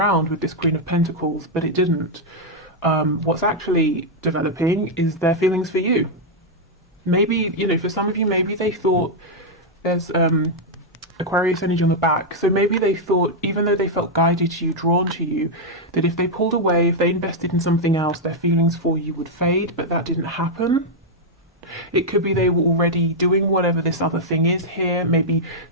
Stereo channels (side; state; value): both; normal; correlation -0.03